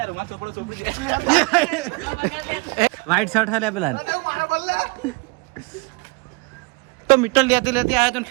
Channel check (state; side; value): quieter; left; 27.1 dB